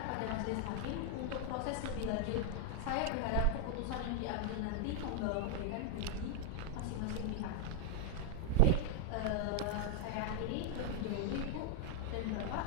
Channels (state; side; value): different; both; correlation 0.00